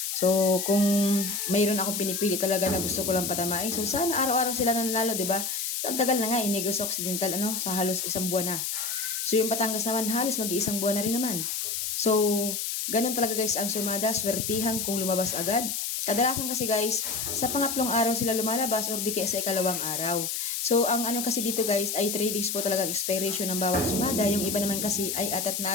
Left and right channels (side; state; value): left; noise; hiss, 2 dB below the sound